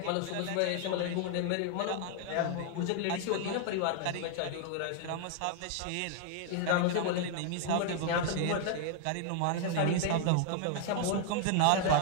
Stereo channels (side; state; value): both; different; correlation 0.00